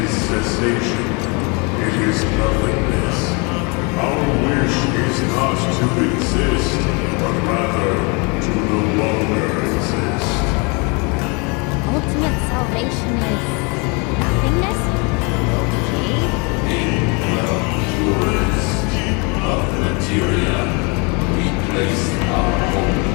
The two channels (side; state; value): right; quieter; 31.3 dB